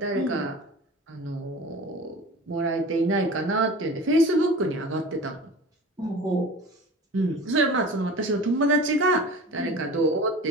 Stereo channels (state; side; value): normal; both; correlation 0.37